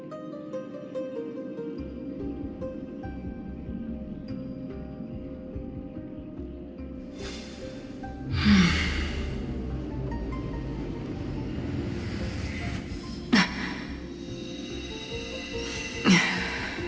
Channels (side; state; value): both; identical; correlation 1.00